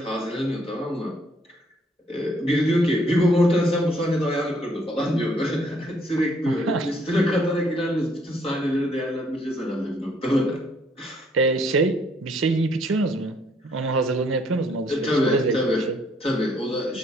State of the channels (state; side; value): normal; both; correlation 0.66